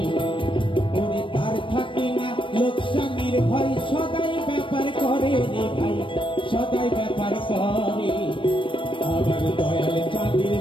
ওরে তার থাকে না লোকসানের ভয় সদাই ব্যাপার করে রে ভাই সদাই ব্যাপার করে আমার দয়াল চাঁদের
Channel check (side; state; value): right; late; 0.25 ms